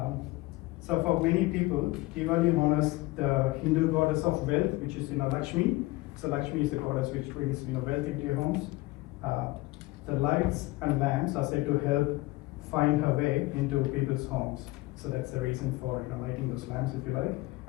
So for many people, Diwali honors the Hindu goddess of wealth, which is Lakshmi. So Lakshmi is the goddess which brings wealth into your homes. The lights and lamps are said to help find her way into people's homes. So that's the reason for lighting those lamps, if you like.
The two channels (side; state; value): right; quieter; 20.5 dB